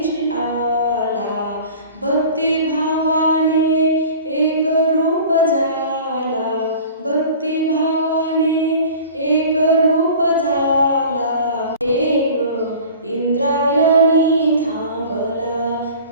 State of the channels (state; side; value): inverted; both; correlation -0.42